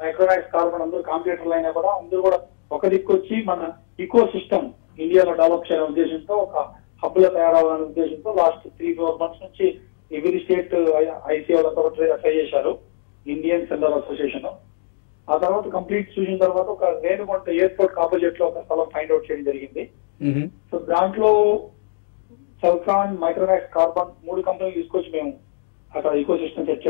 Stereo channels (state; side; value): silent; right; digital silence